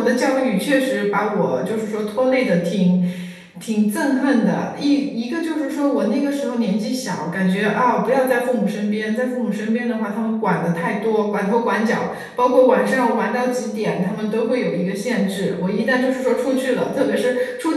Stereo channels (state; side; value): identical; both; correlation 1.00